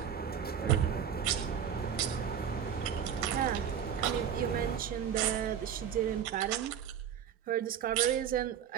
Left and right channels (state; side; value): quieter; left; 8.5 dB